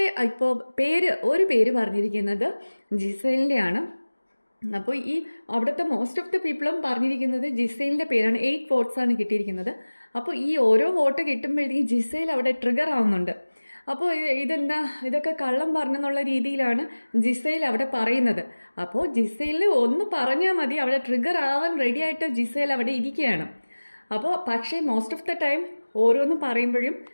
ഇപ്പോൾ ഒരു പേര് പറഞ്ഞിരിക്കുന്നത് ജിസേലിൻ്റെയാണ്. അപ്പോൾ ഈ അവിടുത്തെ മോസ്റ്റ് ഓഫ് ദ പീപ്പിളും പറഞ്ഞിരിക്കുന്നത് ജിസേലിൻ്റെ പേരാണ്. 8 വോട്ട്സാണ് കിട്ടിയിരിക്കുന്നത്. അപ്പോൾ ഈ ഓരോ വോട്ട് കിട്ടുമ്പോഴത്തേക്കും ജിസേൽ അവിടെ ട്രിഗർ ആവുന്നുണ്ട്. അപ്പോൾ ഇതൊക്കെ കള്ളം പറഞ്ഞെന്നുള്ള രീതിയിലാണ് ജിസേൽ അവിടെ പറയുന്നത്. അപ്പോൾ ജിസേലിന് ഒന്ന് പറഞ്ഞാൽ മതി, അവിടെ ട്രിഗർ ആവാൻ റെഡി ആയിട്ട് ജിസേൽ അവിടെ ഇരിക്കുകയാണ്. അപ്പോൾ പക്ഷേ മോസ്റ്റ് ഓഫ് ദ ടൈം ഓരോന്ന് പറയുമ്പോഴും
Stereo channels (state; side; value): inverted; both; correlation -1.00